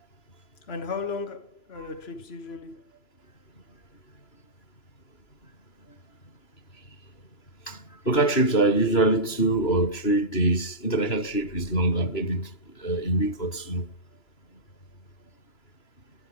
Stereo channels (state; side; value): late; right; 3.0 ms